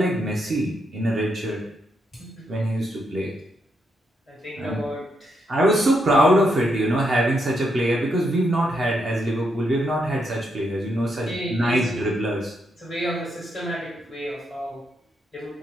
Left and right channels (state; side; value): normal; both; correlation 0.80